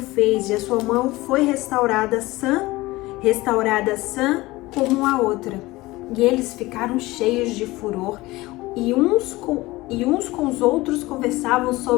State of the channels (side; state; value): right; quieter; 19.9 dB